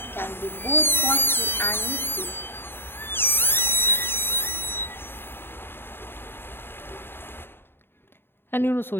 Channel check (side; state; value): right; late; 0.11 ms